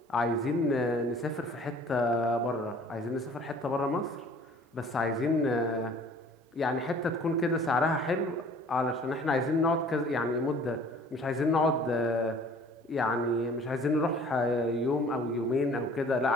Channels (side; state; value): both; normal; correlation 0.51